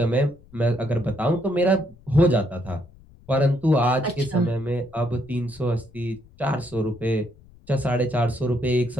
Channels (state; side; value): noise; left; rumble, 24 dB below the sound